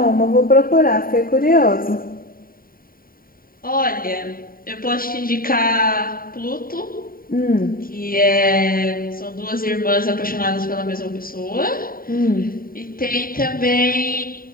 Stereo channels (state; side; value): late; right; 0.42 ms